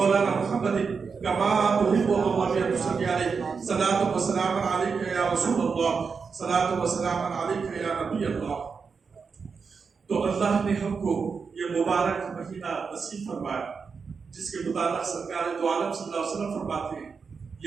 محمد کما تحب اللہ صلی علیہ صلاۃ و سلام علیک یا رسول اللہ، صلاۃ و سلام علیک یا نبی اللہ۔ تو اللہ نے ہم کو یہ مبارک مہینہ نصیب فرمایا جس کے متعلق سرکار دو عالم صلی اللہ علیہ وسلم فرماتے ہیں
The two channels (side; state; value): left; quieter; 5.4 dB